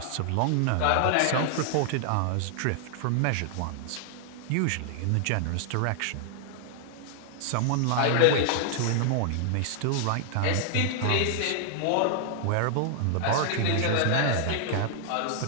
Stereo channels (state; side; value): different; both; correlation 0.00